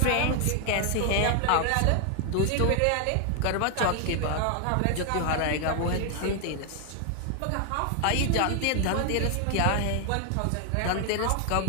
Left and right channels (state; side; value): different; both; correlation 0.01